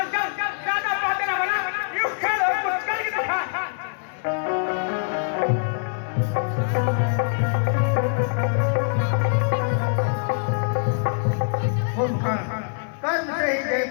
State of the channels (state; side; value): silent; right; digital silence